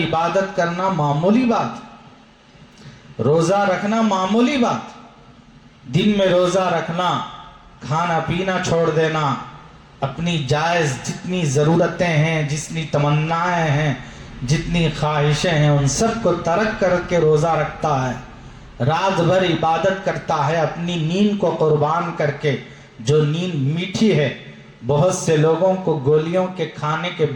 کرنا معمولی بات، روزہ رکھنا معمولی بات، دن میں روزہ رکھنا، کھانا پینا چھوڑ دینا، اپنی جائز جتنی ضرورتیں ہیں، جتنی تمنائیں ہیں، جتنی خواہشیں ہیں، ان سب کو ترک کر کے روزہ رکھتا ہے، رات بھر عبادت کرتا ہے اپنی نیند کو قربان کر کے، جو نیند میٹھی ہے۔ بہت سے لوگوں کو گولیوں کے کھانے کے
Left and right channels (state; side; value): identical; both; correlation 1.00